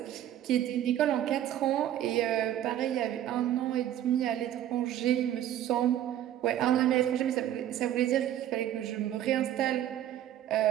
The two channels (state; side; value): quieter; left; 11.7 dB